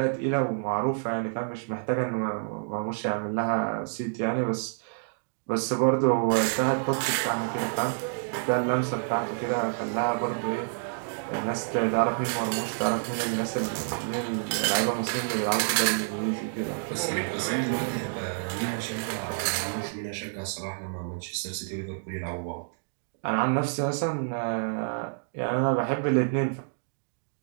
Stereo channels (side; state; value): left; silent; digital silence